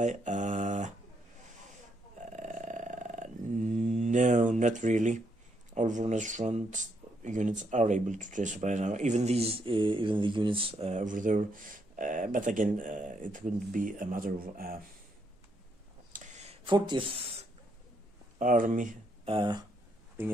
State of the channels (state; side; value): normal; both; correlation 0.75